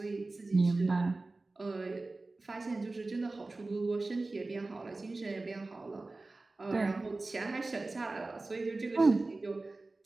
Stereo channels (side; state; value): left; quieter; 3.3 dB